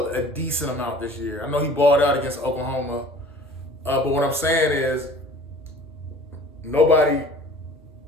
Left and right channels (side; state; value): both; normal; correlation 0.47